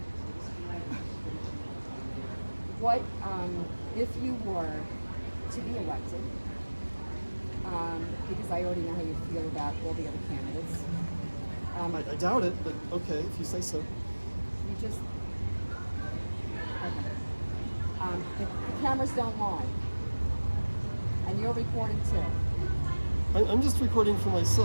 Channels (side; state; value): both; inverted; correlation -1.00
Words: What if you were to be elected? Because I already know how you feel about all the other candidates. I doubt it, but okay, if you say so. You just okay. The cameras don't lie, and you're recording too. I'm just recording for